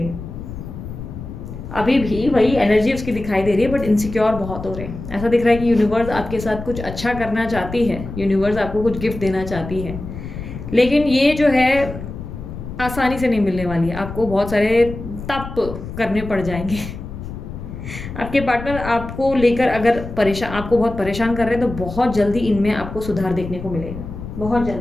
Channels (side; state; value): left; noise; rumble, 10 dB below the sound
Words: अभी भी वही एनर्जी उसकी दिखाई दे रही है, बट इनसिक्योर बहुत हो रहे हैं। ऐसा दिख रहा है कि यूनिवर्स आपके साथ कुछ अच्छा करना चाहती है, यूनिवर्स आपको कुछ गिफ्ट देना चाहती है, लेकिन ये जो है आसानी से नहीं मिलने वाली है। आपको बहुत सारे तप करने पड़ जाएंगे। आपके पार्टनर आपको लेकर अगर आपको बहुत परेशान कर रहे हैं तो बहुत जल्दी इनमें आपको सुधार देखने को मिलेगा, बहुत